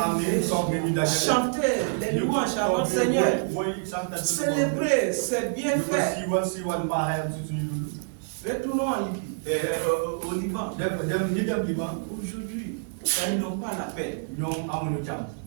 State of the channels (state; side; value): silent; left; digital silence